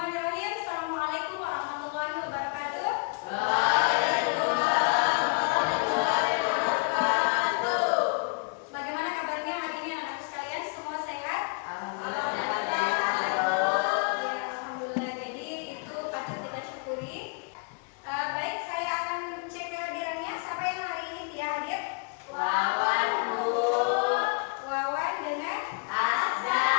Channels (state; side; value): quieter; right; 33.8 dB